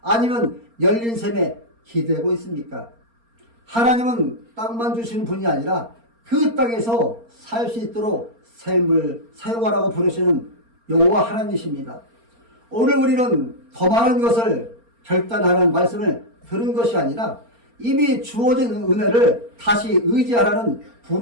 아니면 열린 샘에 기대고 있습니까? 하나님은 땅만 주시는 분이 아니라 그 땅에서 살 수 있도록 샘을 사용하라고 부르시는 여호와 하나님이십니다. 오늘 우리는 더 많은 것을 결단하라는 말씀을 들은 것이 아니라 이미 주어진 은혜를 다시 의지하라는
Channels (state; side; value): late; left; 4.3 ms